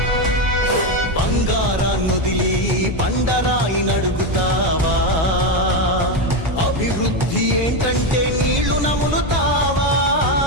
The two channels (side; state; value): both; normal; correlation 0.10